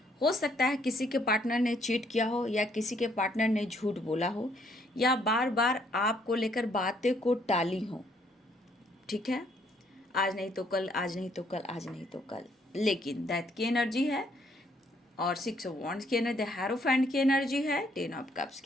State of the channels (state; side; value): normal; both; correlation 0.68